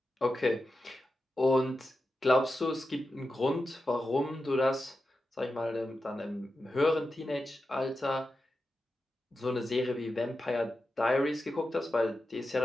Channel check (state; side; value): normal; both; correlation 0.91